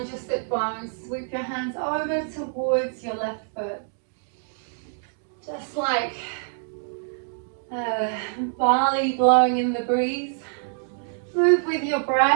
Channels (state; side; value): silent; left; digital silence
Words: your sit bones. Sweep your hands over towards your left foot. Just like barley blowing in the breeze. Move with your